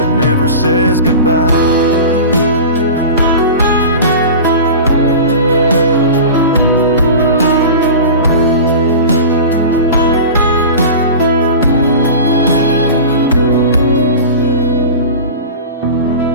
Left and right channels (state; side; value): inverted; both; correlation -0.32